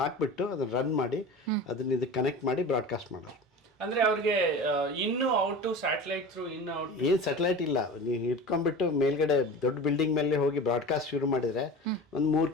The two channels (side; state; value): both; normal; correlation 0.33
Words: ಅದನ್ನ ರನ್ ಮಾಡಿ ಅದನ್ನ ಇದಕ್ಕೆ ಕನೆಕ್ಟ್ ಮಾಡಿ ಬ್ರಾಡ್ಕಾಸ್ಟ್ ಮಾಡೋರು. ಅಂದ್ರೆ ಅವ್ರಿಗೆ ಇನ್ನು ಔಟ್ ಟು ಸ್ಯಾಟಲೈಟ್ ಥ್ರೂ ಇನ್ನು ಔಟ್ ಏನ್ ಸ್ಯಾಟಲೈಟ್ ಇಲ್ಲ, ನೀವು ಇಟ್ಕೊಂಡ್ಬಿಟ್ಟು ಮೇಲ್ಗಡೆ ದೊಡ್ಡ ಬಿಲ್ಡಿಂಗ್ ಮೇಲೆ ಹೋಗಿ ಬ್ರಾಡ್ಕಾಸ್ಟ್ ಶುರು ಮಾಡಿದ್ರೆ ಒಂದು 3